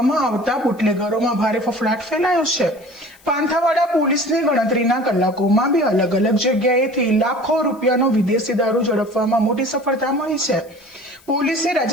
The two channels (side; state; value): left; noise; hiss, 28 dB below the sound